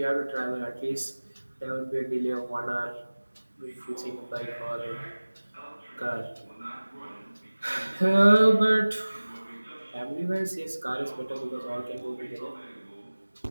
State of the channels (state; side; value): inverted; both; correlation -1.00